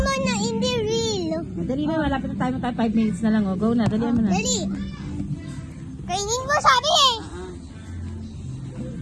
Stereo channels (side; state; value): both; identical; correlation 1.00